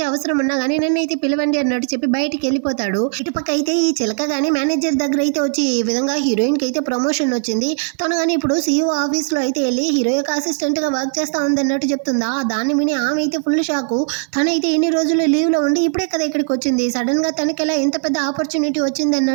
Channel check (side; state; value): left; silent; digital silence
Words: అవసరం ఉన్నా కానీ నన్నైతే పిలవండి అన్నట్టు చెప్పి బయటికి వెళ్ళిపోతాడు. ఇటుపక్క అయితే ఈ చిలక కానీ మేనేజర్ దగ్గర అయితే వచ్చి ఈ విధంగా హీరోయిన్ కి అయితే ప్రమోషన్ వచ్చింది, తను కానీ ఇప్పుడు సీఈఓ ఆఫీస్లో అయితే వెళ్ళి హీరో యొక్క అసిస్టెంట్గా వర్క్ చేస్తూ ఉంది అన్నట్టు చెప్తుందా. దాన్ని విని ఆమె అయితే ఫుల్ షాకు. తనైతే ఇన్ని రోజులు లీవ్లో ఉండి ఇప్పుడే కదా ఇక్కడికి వచ్చింది, సడన్గా తనకి ఎలా ఇంత పెద్ద ఆపర్చునిటీ వచ్చింది